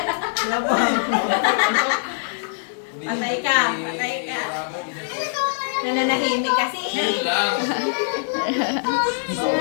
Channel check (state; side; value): silent; right; digital silence